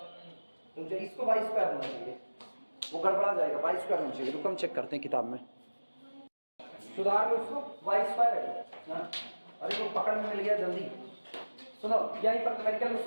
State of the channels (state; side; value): inverted; both; correlation -1.00